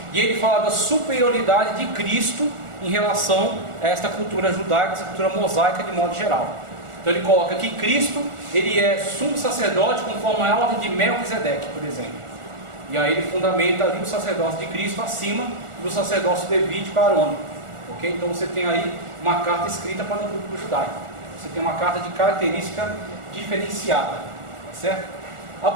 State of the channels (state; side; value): late; left; 1.4 ms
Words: e ele fala da superioridade de Cristo em relação a esta cultura judaica, essa cultura mosaica de modo geral. Então ele coloca que Cristo, ele é sumo sacerdote conforme a ordem de Melquisedeque, por exemplo. E aí ele fundamenta ali o sacerdócio de Cristo acima do sacerdócio levítico arônico. Ok? Então você tem aí uma carta escrita para o público judaico. Você tem uma carta de característica diferenciada. Tá certo?